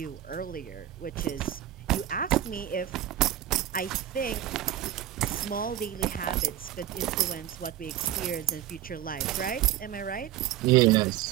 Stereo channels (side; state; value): left; quieter; 12.1 dB